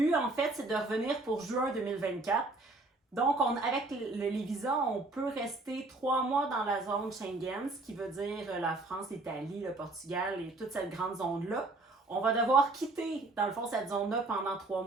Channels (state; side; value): quieter; left; 3.1 dB